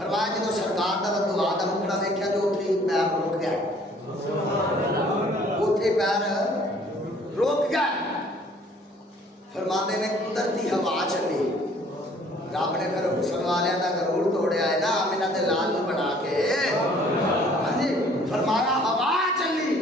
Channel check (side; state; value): both; normal; correlation 0.57